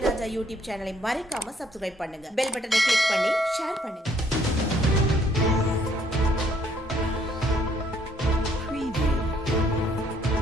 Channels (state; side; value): normal; both; correlation 0.66